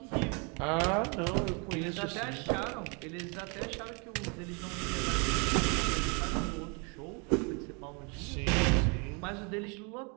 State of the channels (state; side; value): quieter; left; 33.2 dB